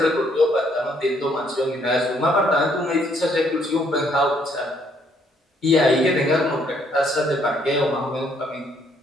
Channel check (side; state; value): both; normal; correlation 0.68